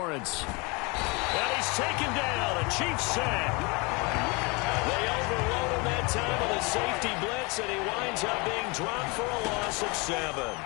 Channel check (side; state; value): right; quieter; 28.4 dB